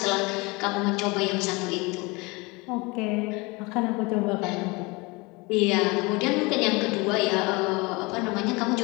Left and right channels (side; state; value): right; quieter; 25.7 dB